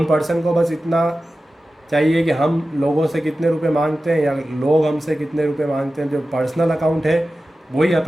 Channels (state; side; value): normal; both; correlation 0.94